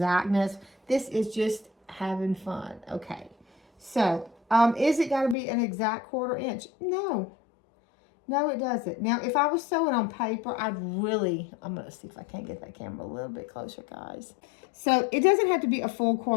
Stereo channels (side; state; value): right; drops out; at 5.4 s